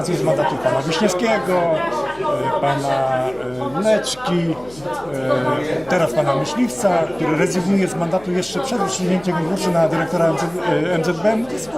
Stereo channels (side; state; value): left; noise; hum, 22 dB below the sound